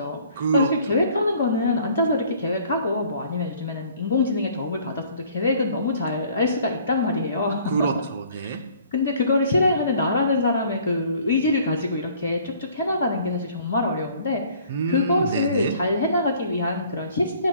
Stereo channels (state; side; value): inverted; both; correlation -0.56